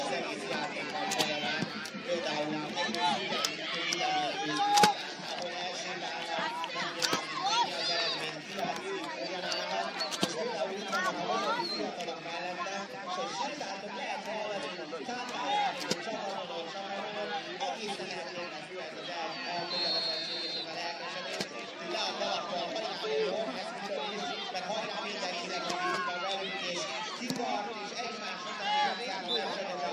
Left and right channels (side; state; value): both; identical; correlation 1.00